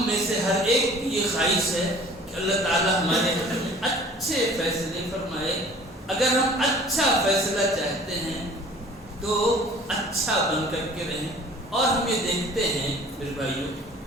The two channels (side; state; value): both; normal; correlation 0.49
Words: میں سے ہر ایک کی یہ خواہش ہے کہ اللہ تعالیٰ ہمارے حق میں اچھے فیصلے فرمائے۔ اگر ہم اچھا فیصلہ چاہتے ہیں تو اچھا بن کر کے رہیں۔ اور ہم یہ دیکھتے ہیں میرے بھائیوں